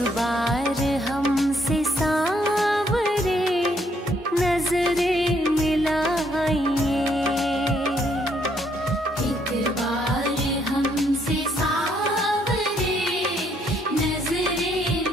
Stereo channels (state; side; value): normal; both; correlation 0.70